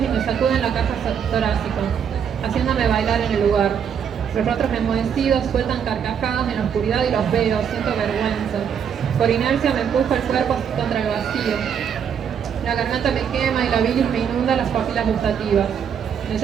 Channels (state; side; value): quieter; left; 7.8 dB